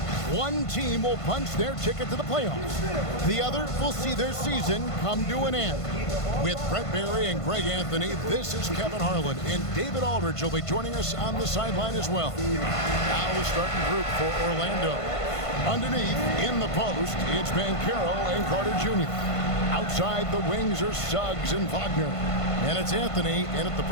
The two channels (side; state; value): right; late; 1.5 ms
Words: One team will punch their ticket to the playoffs. The other will see their season come to an end. With Brett Barry and Greg Anthony, this is Kevin Harlan, and David Aldridge will be joining us on the sideline as well. Now the starting group for Orlando. Underneath, in the post, it's Banchero and Carter Jr. Outside the wings are Suggs and Wagner. And it's Anthony in at the